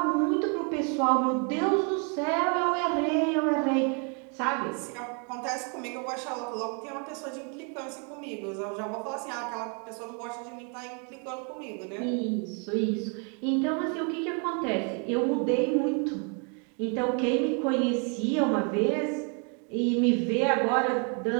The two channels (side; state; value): left; quieter; 37.6 dB